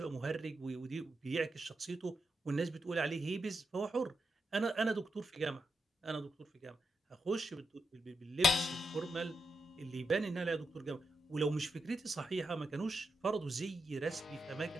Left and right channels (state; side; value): normal; both; correlation 0.85